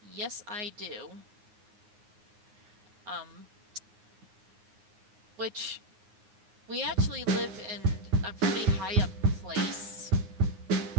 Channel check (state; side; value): late; left; 9.6 ms